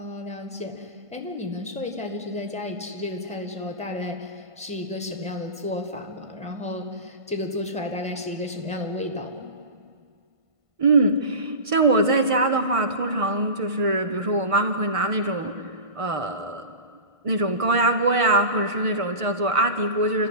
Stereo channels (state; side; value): late; left; 1.5 ms